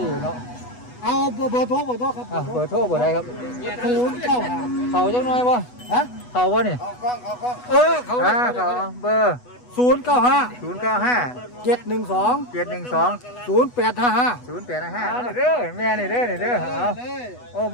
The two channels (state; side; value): late; right; 8.1 ms